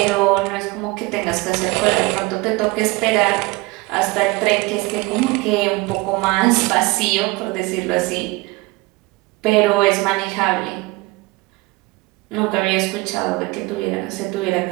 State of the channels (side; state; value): left; quieter; 23.3 dB